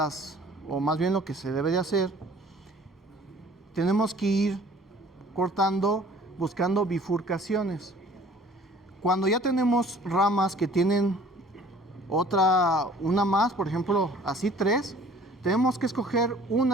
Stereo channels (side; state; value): both; normal; correlation 0.52